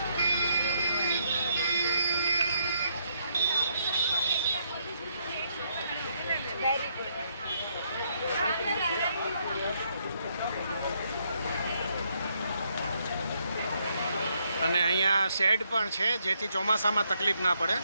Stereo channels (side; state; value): both; inverted; correlation -0.74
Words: અને અહીંયા શેડ પણ છે, જેથી ચોમાસામાં તકલીફ ના પડે.